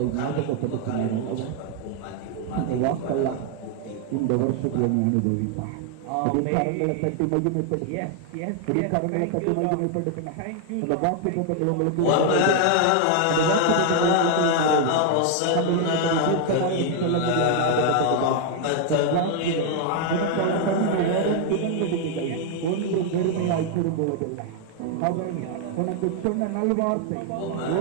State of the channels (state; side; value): different; both; correlation 0.00